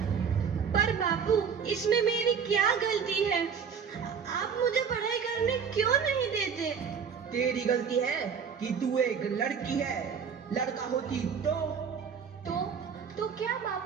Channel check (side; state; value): left; quieter; 6.7 dB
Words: पर बापू, इसमें मेरी क्या गलती है? आप मुझे पढ़ाई करने क्यों नहीं देते? तेरी गलती है कि तू एक लड़की है। लड़का होती तो क्या